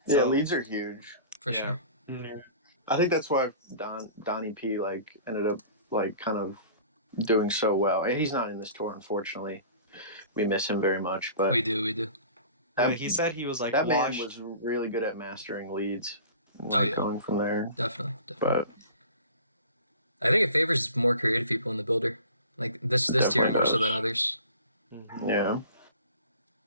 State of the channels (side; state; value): both; inverted; correlation -0.43